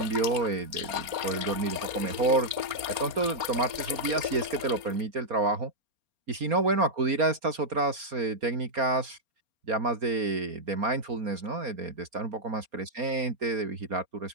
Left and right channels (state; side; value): late; left; 4.3 ms